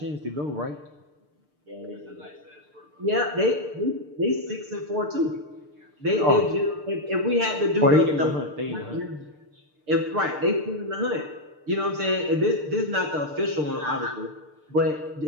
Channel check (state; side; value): late; left; 6.7 ms